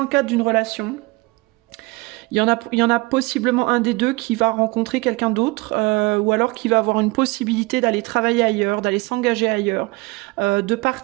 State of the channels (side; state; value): left; quieter; 23.9 dB